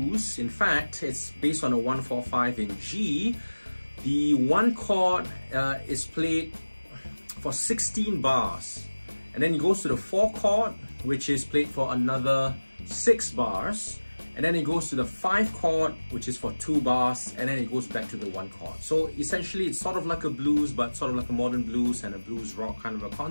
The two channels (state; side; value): inverted; both; correlation -1.00